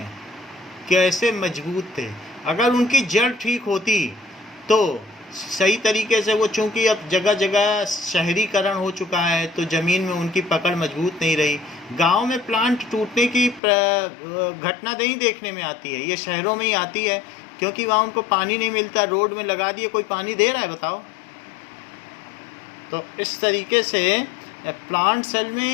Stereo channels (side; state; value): right; drops out; at 13.6 s